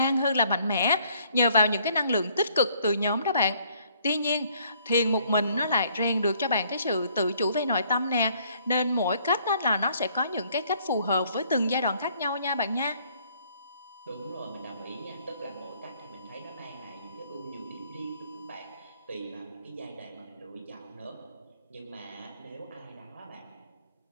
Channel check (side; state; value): both; inverted; correlation -0.64